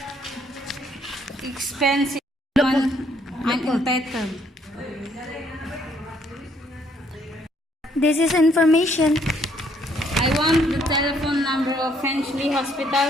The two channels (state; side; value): normal; both; correlation 0.67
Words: expensive. I'm entitled. This is information. I want the telephone number of Finchley